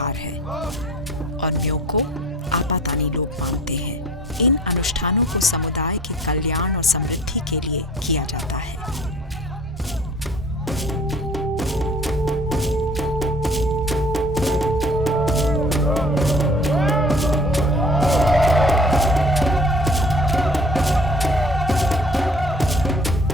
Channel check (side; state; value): both; normal; correlation 0.49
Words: है और म्यो को आपातानी लोग मानते हैं। इन अनुष्ठानों को समुदाय के कल्याण और समृद्धि के लिए किया जाता है।